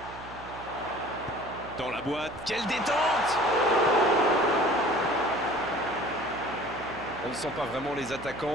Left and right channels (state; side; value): noise; right; hum, 16 dB below the sound